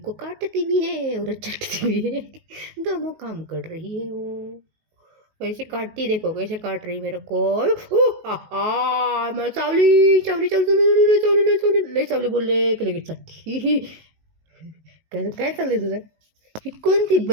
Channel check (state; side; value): late; left; 19 ms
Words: काटती भी है और चटती भी है, दोनों काम कर रही है वो। वैसे काटती, देखो कैसे काट रही मेरे को। मैं चावली चावली चावली चावली चावली ले चावली बोलले की लगेच चटती. काय काय चाललंय तुझं? ही कोणती